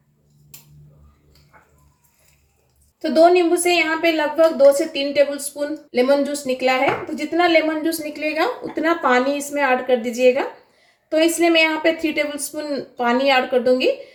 तो 2 नींबू से यहाँ पे लगभग 2 से 3 टेबल स्पून लेमन जूस निकला है। तो जितना लेमन जूस निकलेगा उतना पानी इसमें ऐड कर दीजिएगा। तो इसलिए मैं यहाँ पे 3 टेबल स्पून पानी ऐड कर दूंगी।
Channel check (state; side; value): identical; both; correlation 1.00